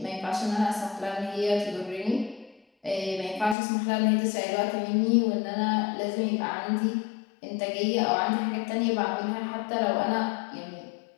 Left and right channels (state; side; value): drops out; right; at 3.6 s